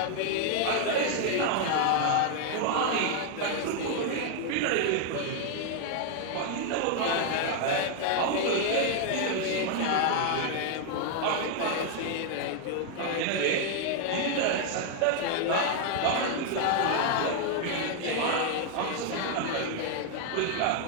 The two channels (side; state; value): both; different; correlation 0.00